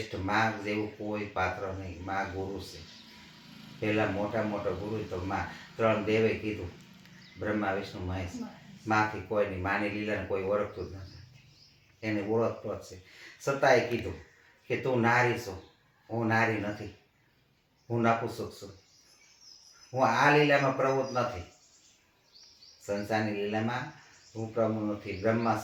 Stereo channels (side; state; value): both; identical; correlation 1.00